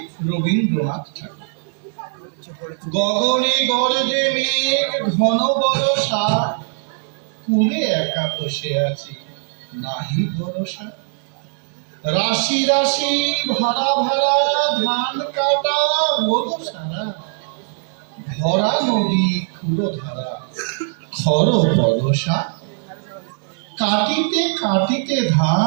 রবীন্দ্রনাথ ঠাকুর। গগনে গরজে মেঘ ঘন বরষা, কুলে একা বসে আছি নাহি ভরসা। রাশি রাশি ভাড়া ভাড়া ধান কাটা রোদ সারা, ভরা নদী ক্ষুরো ধারা খর বরষা। কাটিতে কাটিতে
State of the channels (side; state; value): left; silent; 63 dB below the other